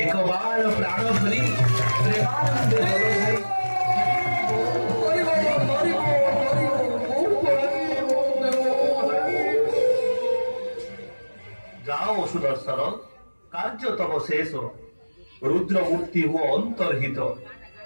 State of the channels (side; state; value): both; inverted; correlation -1.00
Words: একবার প্রাণ ভরি প্রেমানন্দে বল ভাই যাও সুদর্শন কার্য তব শেষ রুদ্র মূর্তি হো অন্তর্হিত